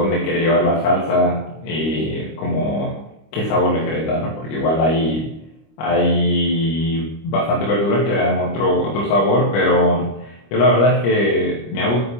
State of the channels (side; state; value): right; late; 25 ms